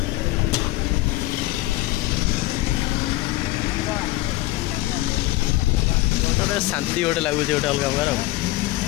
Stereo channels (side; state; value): right; quieter; 18.0 dB